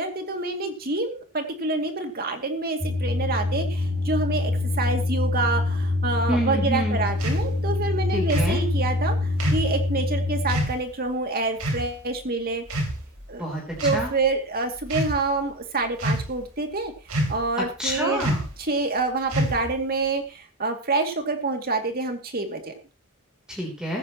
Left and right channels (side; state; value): both; normal; correlation 0.32